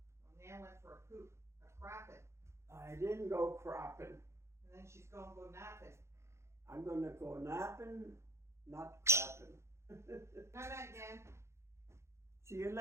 Nan went for a poop, a crapping. I didn't go crapping. And then she's going to go napping. I'm gonna go napping, not crapping. Night night, Nan. See you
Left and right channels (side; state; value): left; late; 0.13 ms